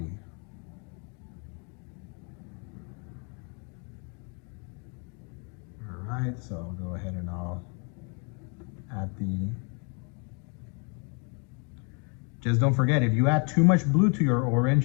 right, so I'll go ahead and I'll add the, just don't forget, if you add too much blue to your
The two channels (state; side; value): quieter; right; 36.6 dB